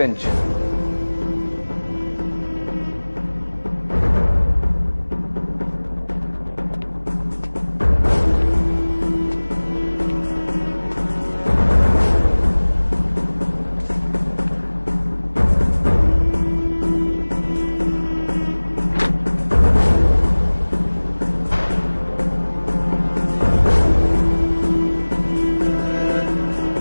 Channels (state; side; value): inverted; both; correlation -1.00